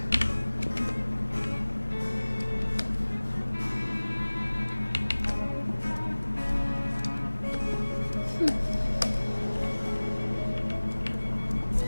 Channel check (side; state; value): both; inverted; correlation -1.00